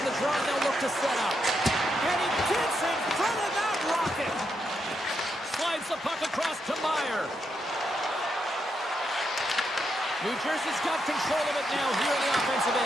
the draw, and they'll look to set up. And he gets in front of that rocket. Slides the puck across to Meyer. New Jersey's got control of it now here on the offensive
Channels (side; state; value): both; normal; correlation 0.82